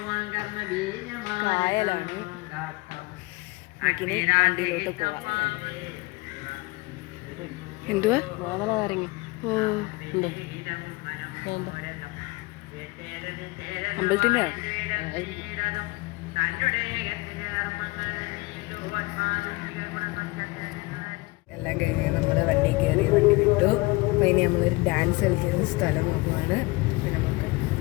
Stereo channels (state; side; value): quieter; right; 23.8 dB